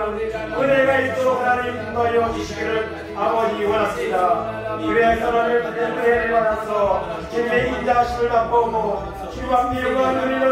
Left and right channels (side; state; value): both; identical; correlation 1.00